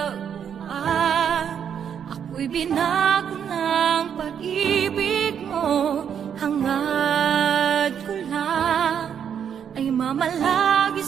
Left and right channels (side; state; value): left; quieter; 8.2 dB